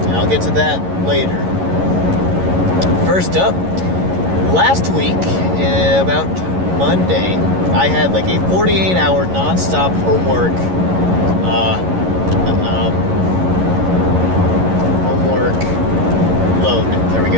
I'll get to that later. First up, last week, about Monday, I had like a 48-hour non-stop homework load. There we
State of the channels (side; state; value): left; late; 11 ms